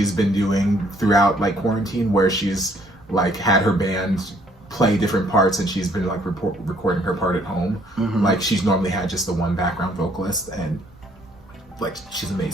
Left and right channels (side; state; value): both; normal; correlation 0.64